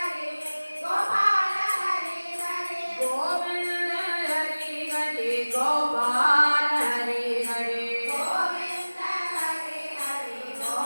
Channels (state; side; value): inverted; both; correlation -1.00